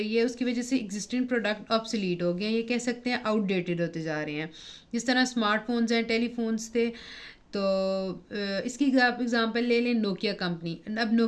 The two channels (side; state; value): both; identical; correlation 1.00